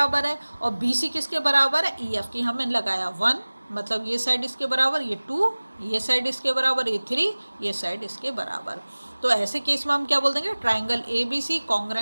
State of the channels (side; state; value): both; inverted; correlation -1.00